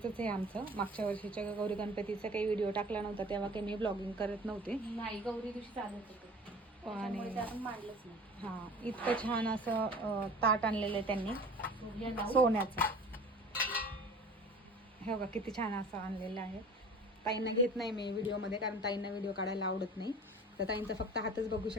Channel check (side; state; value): both; normal; correlation 0.43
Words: आहे आमचं. मागच्या वर्षीच्या गौरी गणपतीचा काही व्हिडिओ टाकला नव्हता तेव्हा काही मी ब्लॉगिंग करत नव्हते. नाही, गौरी दिवशी चालत होतं आणि त्यामुळे ते आपण मांडलंच नाही. हां, इतकं छान असं ताट आणलेलं आहे त्यांनी सूर्य लावून सोन्याचं. हे बघा किती छान असं आणलेलं आहे. ताईंना घेत नाही मी व्हिडिओमध्ये, कारण ताईंना व्हिडिओ काढायला आवडत नाही. तर ताईंचा फक्त हातच बघू